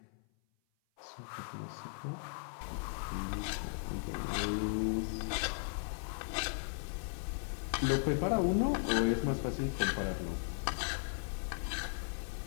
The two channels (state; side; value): silent; right; 53 dB below the other